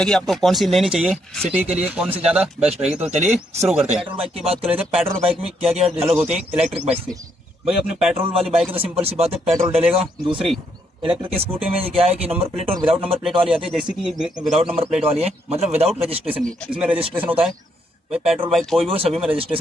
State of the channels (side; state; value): both; normal; correlation 0.75